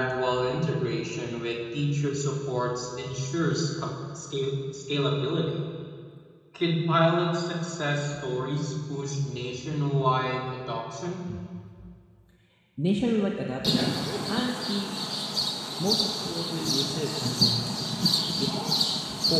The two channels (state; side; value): identical; both; correlation 1.00